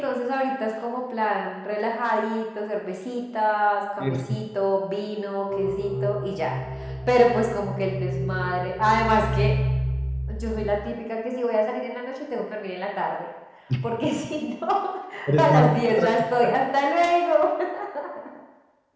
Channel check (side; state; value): both; identical; correlation 1.00